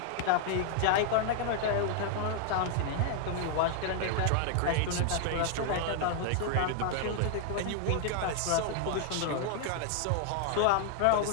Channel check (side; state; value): both; different; correlation 0.00